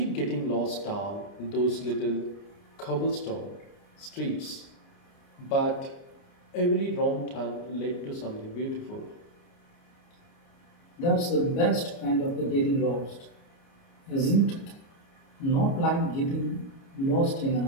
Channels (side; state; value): right; late; 29 ms